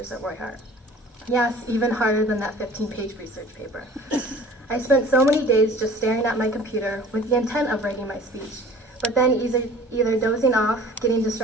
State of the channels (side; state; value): both; normal; correlation 0.46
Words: at Roy Hart. Yes, even harder than that 15-page research paper. I spent so many days just staring at my computer with the intent of writing my speech, but then either dozing off, getting